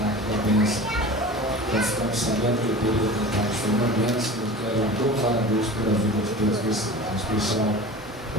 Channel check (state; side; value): normal; both; correlation 0.35